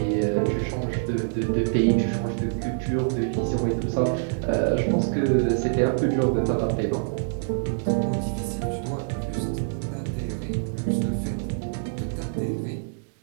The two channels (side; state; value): left; silent; digital silence